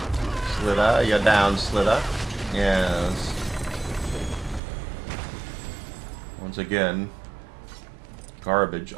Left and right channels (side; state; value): left; drops out; at 4.6 s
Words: Slither, you're down, Slither. Yes. Once again, garbage.